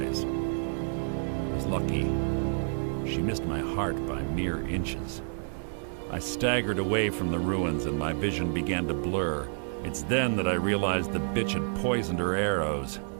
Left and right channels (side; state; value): left; silent; 58 dB below the other